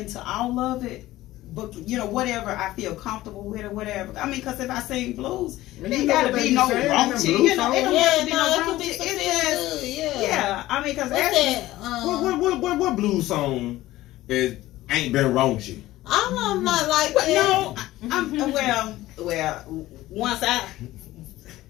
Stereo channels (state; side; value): quieter; right; 16.3 dB